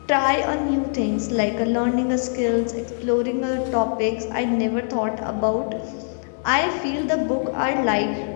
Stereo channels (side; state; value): right; silent; 64 dB below the other